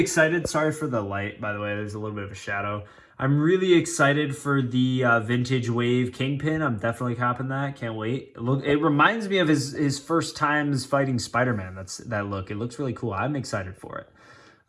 Sorry for the light, by the way. There's a little bit of a shadow. I'm really excited for the Vintage Wave Kingpin. I'm definitely copping that. Can't wait. It reminds me of his first times fighting Spider-Man. That look. It looks really cool. I'm excited for it.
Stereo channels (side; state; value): both; identical; correlation 1.00